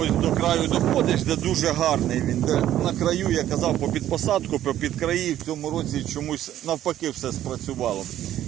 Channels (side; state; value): left; quieter; 12.2 dB